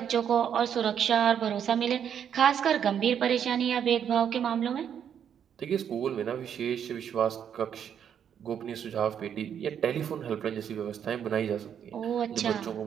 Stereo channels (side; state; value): left; quieter; 8.6 dB